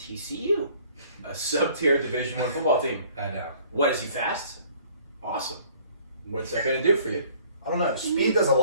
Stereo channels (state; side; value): inverted; both; correlation -0.55